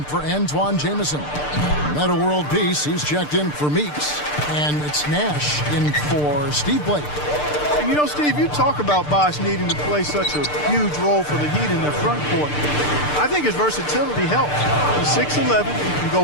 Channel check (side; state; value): right; late; 6.7 ms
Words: for Antoine Jamison. Meta World Peace, he's checked in for Meeks. And it's Nash in for Steve Blake. And you know, Steve, you talk about Bosh needing to play such a huge role for the Heat in their front court. I think his versatility helps. He's 6'11", he can